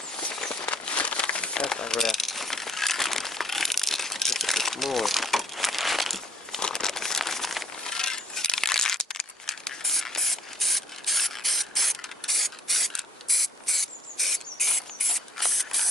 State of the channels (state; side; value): normal; both; correlation 0.60